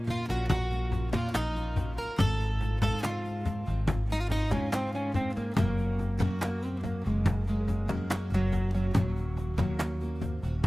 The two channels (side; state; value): both; normal; correlation 0.97